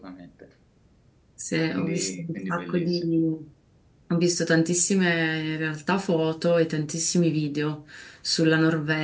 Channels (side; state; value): both; identical; correlation 1.00